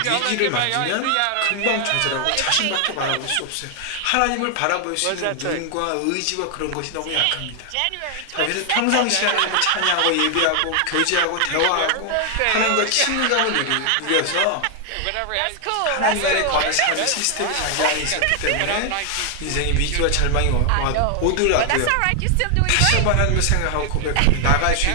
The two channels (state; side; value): different; both; correlation 0.00